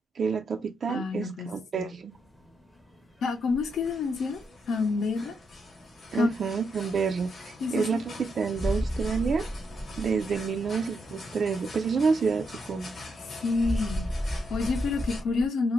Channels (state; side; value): normal; both; correlation 0.80